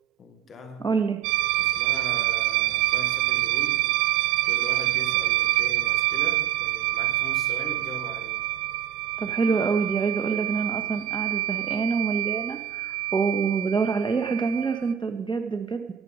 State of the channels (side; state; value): left; quieter; 9.3 dB